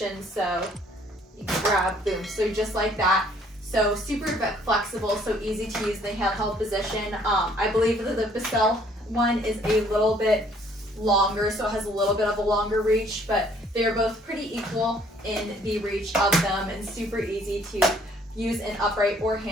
So you can grab, boom, so just like that. So super flexible, so easy to use in the handheld position. I believe that the Bissell one is a little bit longer, so it has a little bit of a longer reach, but they're both pretty equal in the reach of them and super easy to use in upright or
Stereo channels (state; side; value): normal; both; correlation 0.61